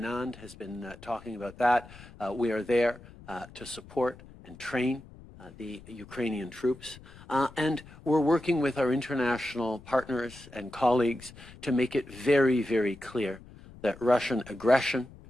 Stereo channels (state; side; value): noise; left; rumble, 20 dB below the sound